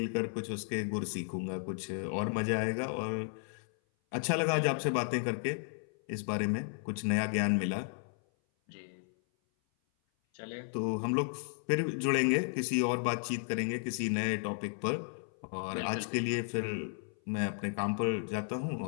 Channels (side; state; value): right; silent; 55 dB below the other